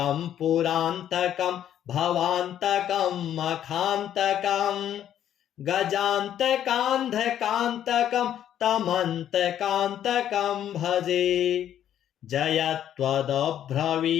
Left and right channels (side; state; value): right; quieter; 10.6 dB